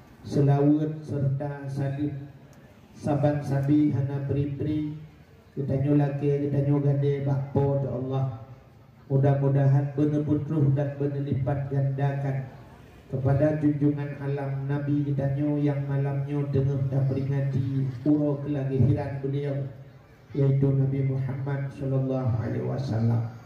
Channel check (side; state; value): both; identical; correlation 1.00